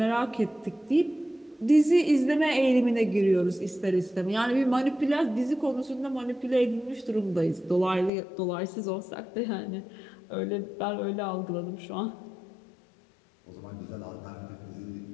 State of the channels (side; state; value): right; drops out; at 8.1 s